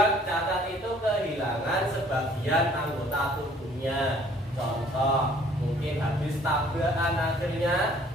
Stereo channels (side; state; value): both; normal; correlation 0.58